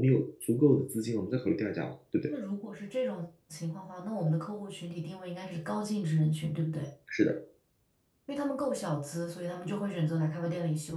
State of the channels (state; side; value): identical; both; correlation 1.00